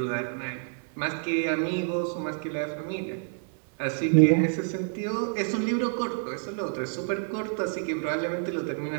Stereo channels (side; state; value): left; silent; 59 dB below the other